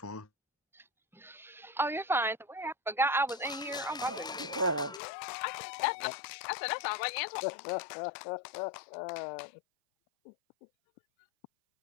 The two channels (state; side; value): drops out; right; at 5.0 s